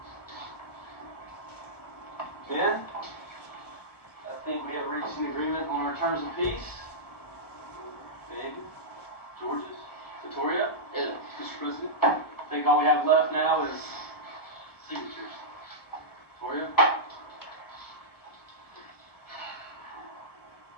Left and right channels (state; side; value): late; right; 1.2 ms